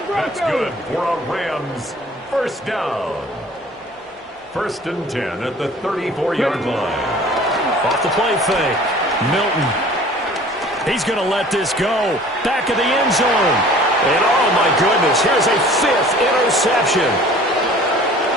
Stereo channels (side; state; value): both; normal; correlation 0.48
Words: That's good for a Rams first down. 1st and 10 at the 34-yard line. Off the play fake. Milton. He's going to let this go. Back of the end zone. And oh my goodness, here's a 5th interception.